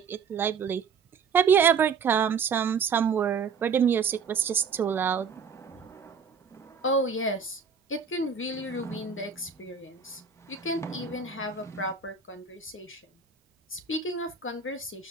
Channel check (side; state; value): left; quieter; 5.8 dB